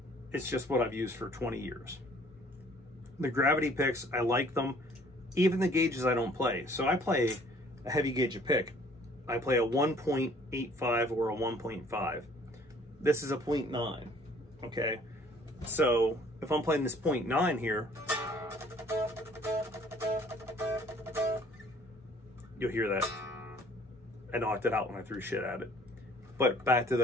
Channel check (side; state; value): both; normal; correlation 0.57